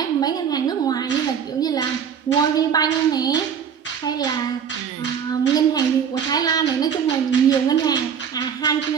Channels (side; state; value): left; quieter; 7.6 dB